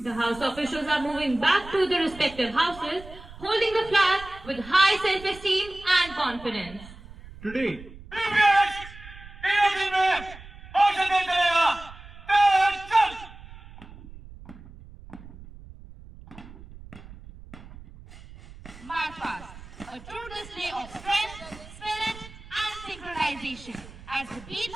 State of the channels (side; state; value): right; noise; rumble, 17 dB below the sound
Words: The House officials are moving back to their respective houses, holding the flag with high self-esteem and confidence. Today, March past, a true display of strength, spirit, and synchronization. As the beats